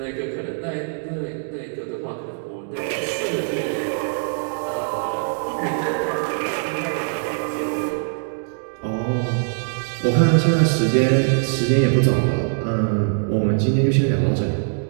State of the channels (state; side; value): silent; left; digital silence